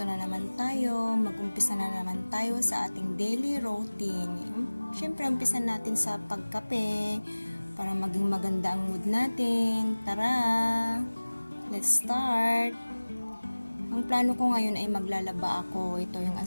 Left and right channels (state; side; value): inverted; both; correlation -1.00